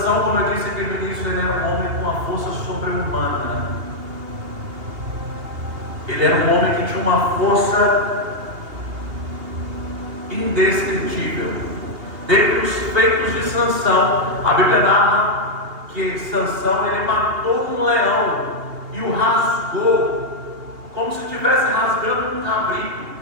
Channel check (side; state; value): left; late; 2.8 ms